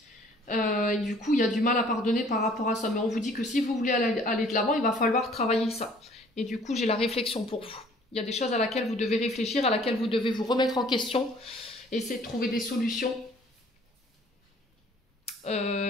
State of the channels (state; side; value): normal; both; correlation 0.56